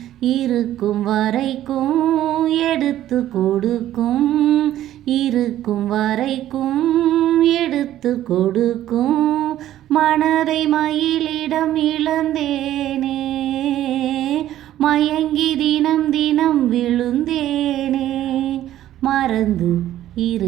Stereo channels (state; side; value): quieter; left; 12.9 dB